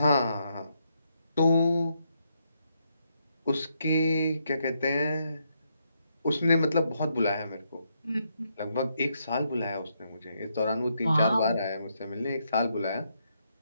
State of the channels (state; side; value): inverted; both; correlation -0.78